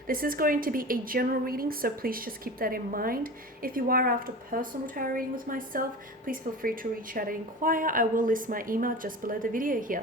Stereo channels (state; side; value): normal; both; correlation 0.33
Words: this is going to be a general reading, so please just keep that in mind. If you are after personal tarot reading with myself, please feel free to reach out and inquire. I will list my email just below the video